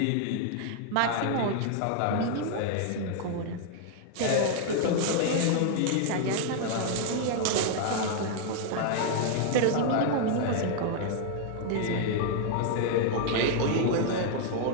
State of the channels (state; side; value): different; both; correlation 0.00